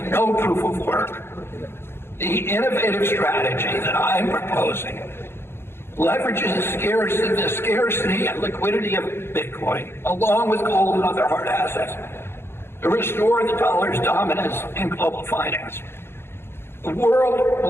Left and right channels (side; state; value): right; late; 0.11 ms